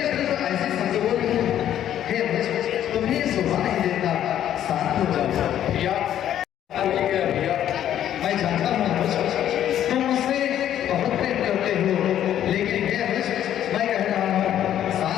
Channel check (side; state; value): right; quieter; 11.0 dB